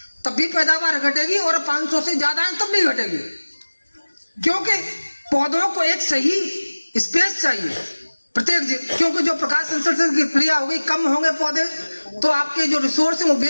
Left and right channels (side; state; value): both; inverted; correlation -1.00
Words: तब भी पैदावार घटेगी और 500 से ज्यादा है तब भी घटेगी, क्योंकि पौधों को एक सही स्पेस चाहिए प्रत्येक, क्योंकि जो प्रकाश संश्लेषण की क्रिया होगी, कम होंगे पौधे तो आपके जो रिसोर्स है वो